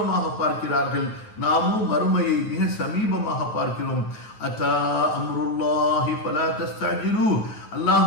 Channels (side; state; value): right; late; 9.3 ms